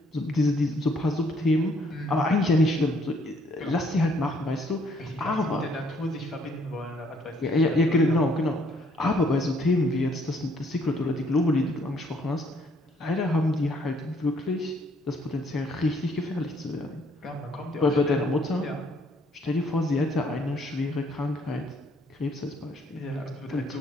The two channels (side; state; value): both; normal; correlation 0.66